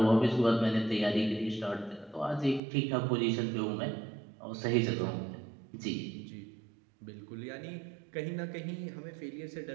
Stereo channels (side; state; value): left; drops out; at 2.6 s